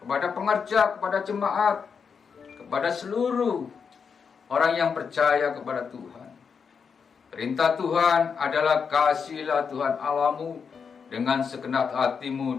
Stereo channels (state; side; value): quieter; right; 6.1 dB